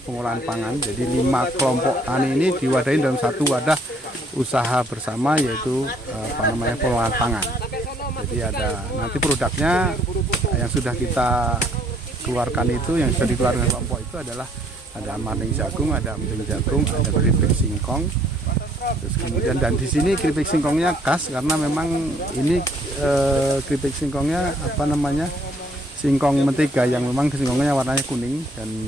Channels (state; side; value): normal; both; correlation 0.64